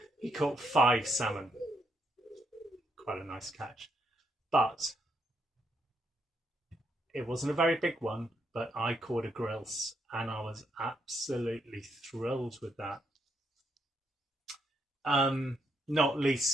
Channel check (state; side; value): normal; both; correlation 0.76